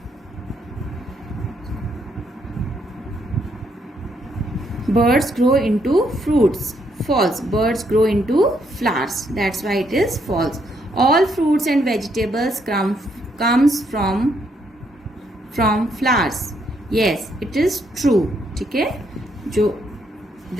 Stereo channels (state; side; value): normal; both; correlation 0.74